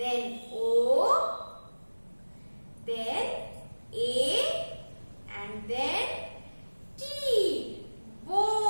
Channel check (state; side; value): inverted; both; correlation -1.00